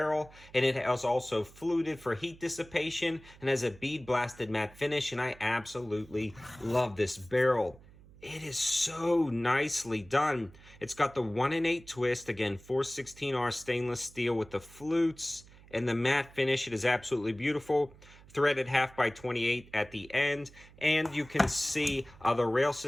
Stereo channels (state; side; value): noise; right; hum, 23 dB below the sound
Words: and it has also fluted for heat dissipation and has a bead blasted matte finish, and I absolutely love this barrel. It is so nicely done. It's got the 1-in-8 twist, again, 416R stainless steel with the flutes and the matte finish. It is absolutely beautiful. Threaded 1/2x28 at the end, and you can see the rail